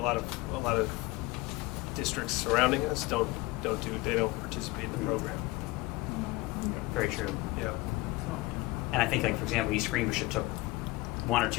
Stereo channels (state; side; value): quieter; right; 21.2 dB